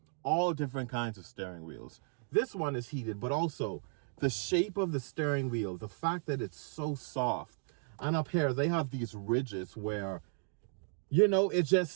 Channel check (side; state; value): left; silent; 55 dB below the other